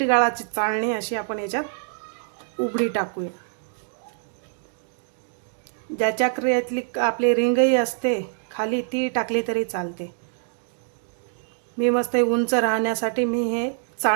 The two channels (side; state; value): left; silent; digital silence